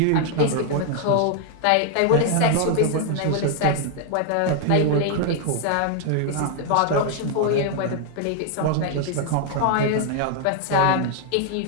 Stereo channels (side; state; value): both; different; correlation 0.00